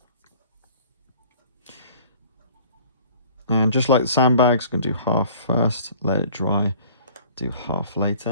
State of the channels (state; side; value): inverted; both; correlation -0.50